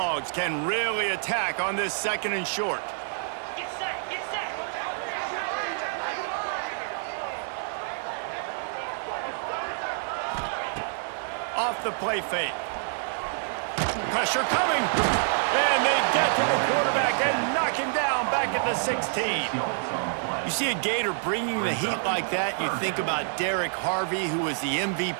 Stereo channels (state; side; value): silent; left; digital silence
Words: can really attack on this 2nd and short. Off the play fake. Pressure coming. And they get to the quarterback and knock him down back at the 16. You see a Gator bringing the heat like that, you think about Derek Harvey, who was the